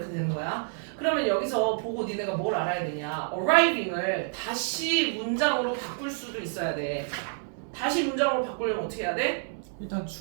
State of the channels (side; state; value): left; silent; 59 dB below the other